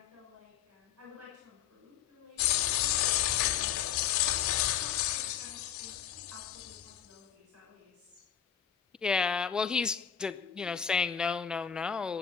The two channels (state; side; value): quieter; right; 8.6 dB